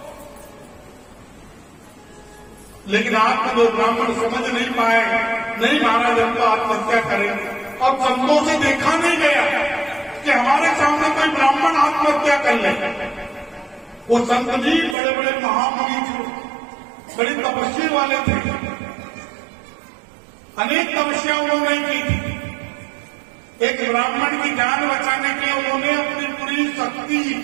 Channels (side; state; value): left; drops out; at 15.0 s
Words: लेकिन आप जो ब्राह्मण समझ नहीं पाए, नहीं महाराज हम तो आत्महत्या करेंगे। और संतों से देखा नहीं गया कि हमारे सामने कोई ब्राह्मण आत्महत्या कर ले। वो संत जी बड़े बड़े महामुनि थे, बड़ी तपस्वी वाले थे, अनेक तपस्या उन्होंने की थी। एक ब्राह्मण की जान बचाने के लिए उन्होंने अपनी पूरी शक्ति,